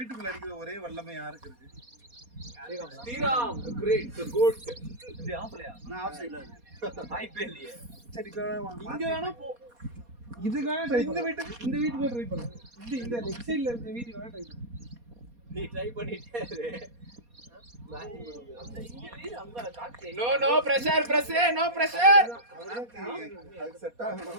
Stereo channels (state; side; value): late; left; 4.2 ms